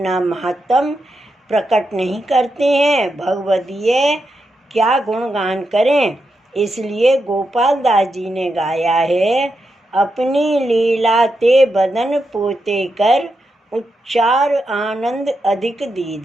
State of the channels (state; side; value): normal; both; correlation 0.86